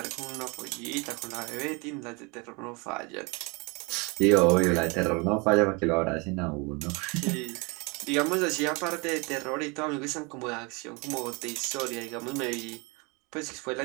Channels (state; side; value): quieter; left; 29.1 dB